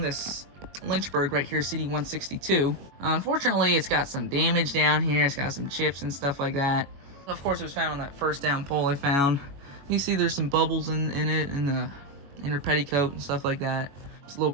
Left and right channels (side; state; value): left; late; 21 ms